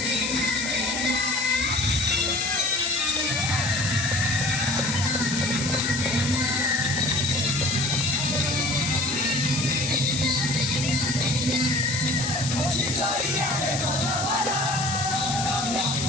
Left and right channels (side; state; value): left; noise; hiss, 4 dB below the sound